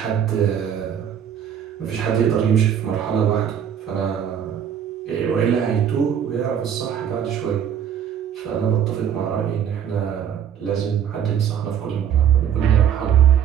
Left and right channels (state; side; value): quieter; left; 8.8 dB